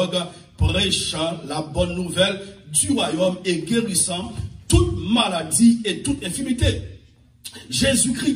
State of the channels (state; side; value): identical; both; correlation 1.00